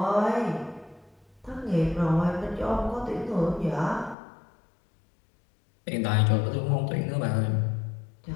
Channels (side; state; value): right; drops out; at 4.2 s